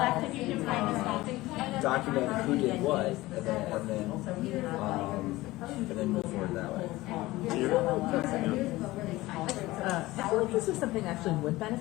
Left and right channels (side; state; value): right; quieter; 18.8 dB